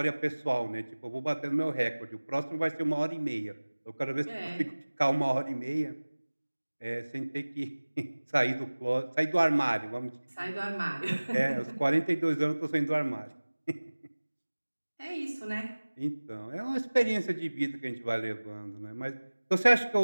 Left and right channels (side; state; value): both; inverted; correlation -1.00